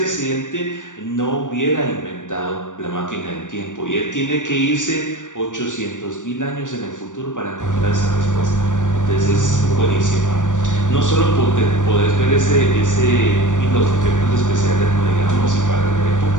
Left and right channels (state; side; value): late; right; 0.87 ms